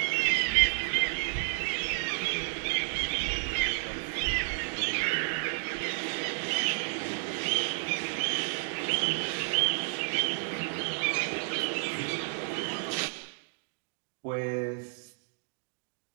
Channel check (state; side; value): silent; left; digital silence